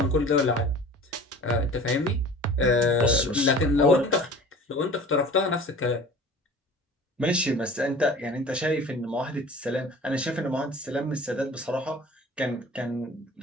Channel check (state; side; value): normal; both; correlation 0.43